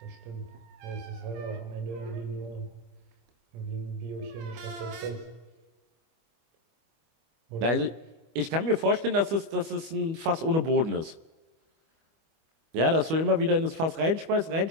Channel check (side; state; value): left; late; 25 ms